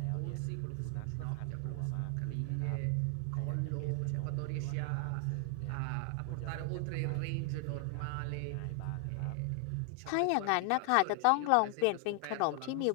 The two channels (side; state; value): both; different; correlation 0.00